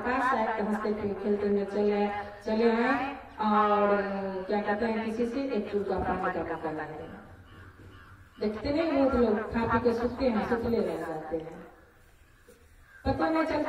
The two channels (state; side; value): identical; both; correlation 1.00